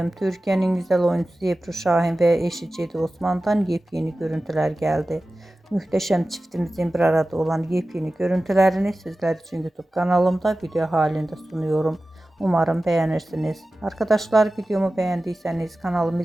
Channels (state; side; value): normal; both; correlation 0.95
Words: Türkiye'nin güzel oyuncusu Ebru Şahin ve eşi Cedi Osman'dan yepyeni görüntüler geldi. Muhteşem çiftimizin bir arada olan yepyeni görüntülerini sizler için YouTube kanalımda video halinde sunuyorum. Umarım beğenirsiniz. Arkadaşlar, videomu beğendiyseniz kanalımı